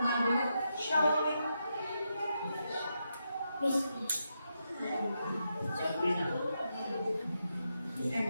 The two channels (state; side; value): inverted; both; correlation -0.84